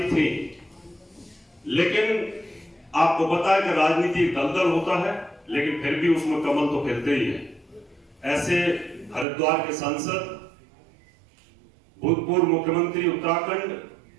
थी। लेकिन आपको पता है कि राजनीति दलदल होता है, लेकिन फिर भी उसमें कमल तो खिलते ही है। ऐसे हरिद्वार के सांसद, भूतपूर्व मुख्यमंत्री उत्तराखंड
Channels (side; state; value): left; drops out; at 9.2 s